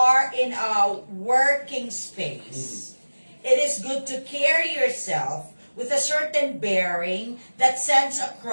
in a working space, it is good to carry yourself with a certain bearing that sends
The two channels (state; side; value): inverted; both; correlation -1.00